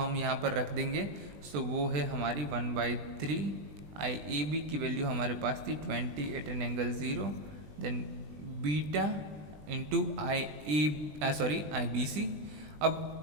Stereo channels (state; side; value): late; left; 20 ms